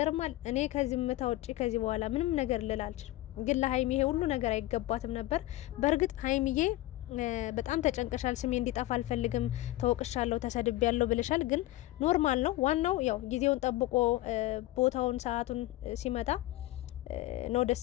እኔ ከዚህ ምታ ውጪ ከዚህ በኋላ ምንም ነገር ልል አልችልም። ግን ለሀይሚ ይሄ ሁሉ ነገር አይገባትም ነበር። በእርግጥ ሀይሚዬ በጣም ተጨንቀሻል። ስሜ እንዲጠፋ አልፈልግም፣ ተወቅሻለሁ፣ ተሰድቤያለሁ ብለሻል። ግን ኖርማል ነው። ዋናው ያው ጊዜውን ጠብቆ ቦታውን ሰዓቱን ሲመጣ ነው ደስ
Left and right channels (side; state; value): right; quieter; 16.9 dB